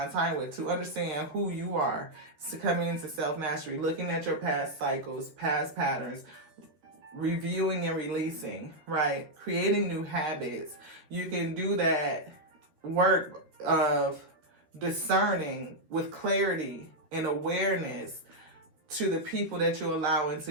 time with. To understand who you are, coming into self-mastery, looking at your past cycles, past patterns, reviewing and releasing, right? Creating new habits. You can do that work of discerning with clarity and awareness to the people that you allow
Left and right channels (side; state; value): left; late; 13 ms